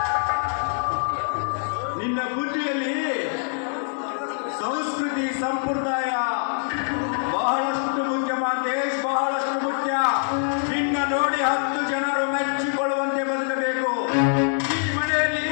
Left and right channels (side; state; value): right; silent; 60 dB below the other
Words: ನಿನ್ನ ಬುದ್ಧಿಯಲ್ಲಿ ಸಂಸ್ಕೃತಿ, ಸಂಪ್ರದಾಯ ಬಹಳಷ್ಟು ಮುಖ್ಯ ಮಾಂತೇಶ್, ಬಹಳಷ್ಟು ಮುಖ್ಯ. ನಿನ್ನ ನೋಡಿ 10 ಜನರು ಮೆಚ್ಚಿಕೊಳ್ಳುವಂತೆ ಬದುಕಬೇಕು. ಈ ಮನೆಯಲ್ಲಿ